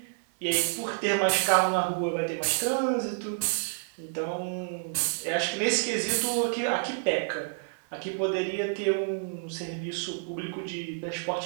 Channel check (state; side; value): silent; left; 56 dB below the other